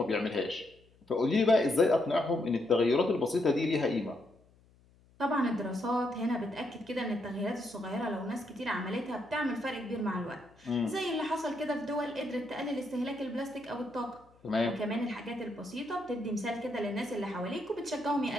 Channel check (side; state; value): left; noise; hum, 30 dB below the sound